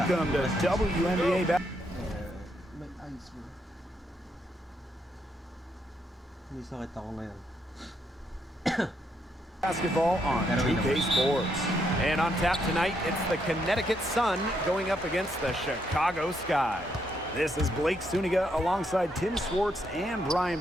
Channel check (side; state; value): both; normal; correlation 0.76